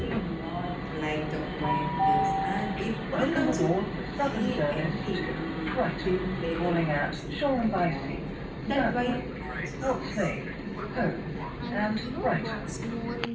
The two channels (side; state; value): both; identical; correlation 1.00